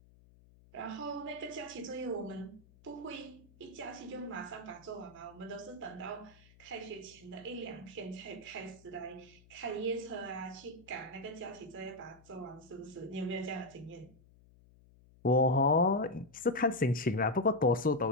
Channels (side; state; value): left; noise; hum, 26 dB below the sound